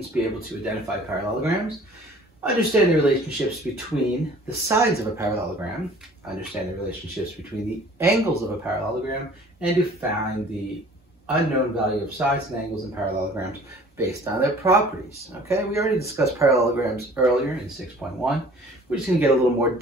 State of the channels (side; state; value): both; normal; correlation 0.50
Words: to be able to identify parallelograms, understand the relationships between the sides of a parallelogram, understand the relationships between the angles of a parallelogram, and to find the unknown value of sides and angles in parallelograms based on their properties. Okay, we already discussed parallelograms earlier in 6.1. We're just going to get a little more,